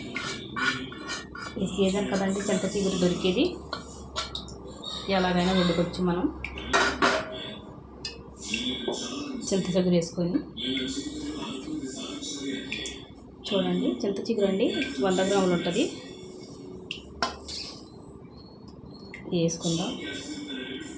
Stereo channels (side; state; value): both; identical; correlation 1.00